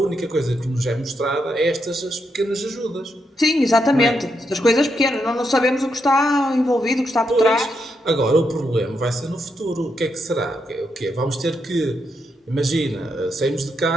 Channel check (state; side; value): normal; both; correlation 0.81